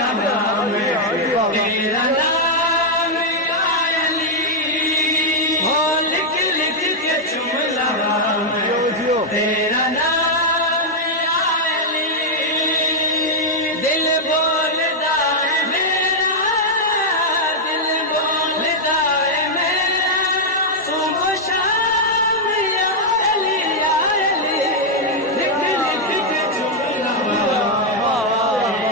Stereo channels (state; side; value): normal; both; correlation -0.03